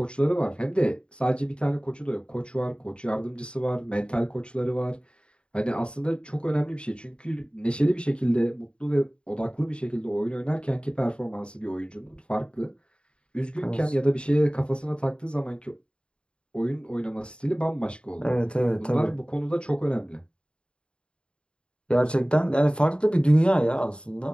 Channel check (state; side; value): late; right; 0.054 ms